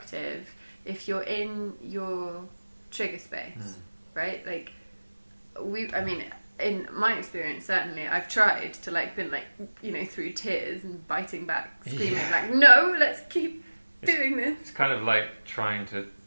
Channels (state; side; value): inverted; both; correlation -1.00